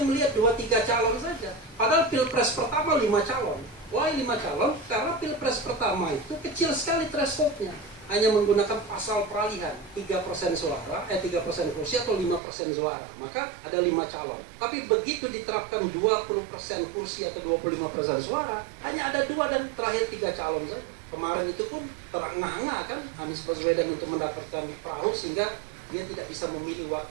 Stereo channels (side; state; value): left; drops out; at 12.4 s